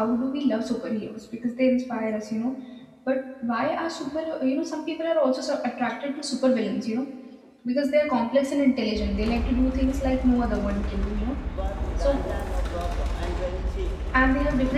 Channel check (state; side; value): identical; both; correlation 1.00